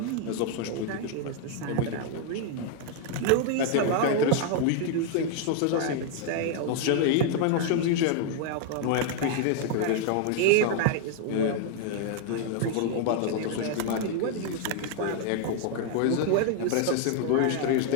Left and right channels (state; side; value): different; both; correlation 0.00